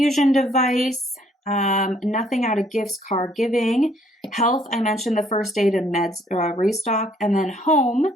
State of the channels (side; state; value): both; normal; correlation 0.64